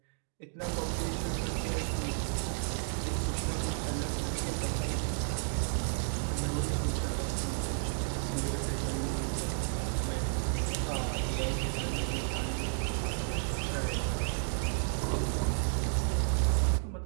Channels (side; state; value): left; silent; digital silence